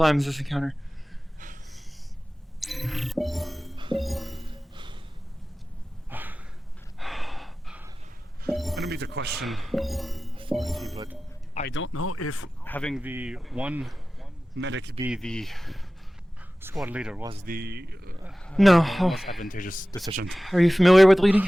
this encounter. I don't mean to question authority, but I don't know if having the one medic be the squad leader was the No. most advantageous decision. Are you familiar with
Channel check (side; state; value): both; normal; correlation 0.96